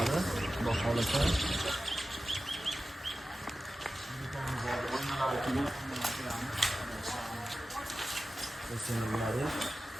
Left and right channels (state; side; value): normal; both; correlation 0.95